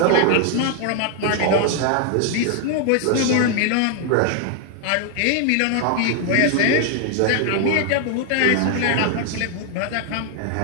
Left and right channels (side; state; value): both; different; correlation 0.00